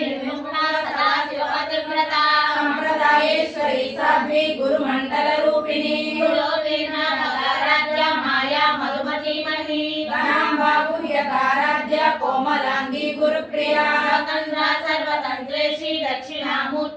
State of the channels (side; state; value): both; identical; correlation 1.00